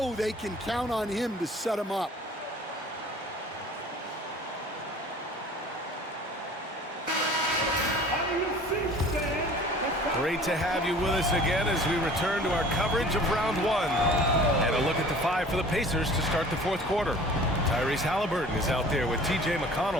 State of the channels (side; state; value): both; normal; correlation 0.47